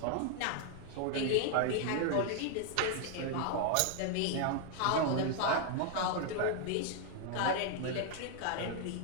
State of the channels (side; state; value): both; different; correlation 0.00